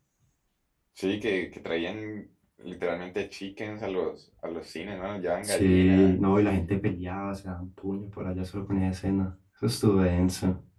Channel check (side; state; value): both; identical; correlation 1.00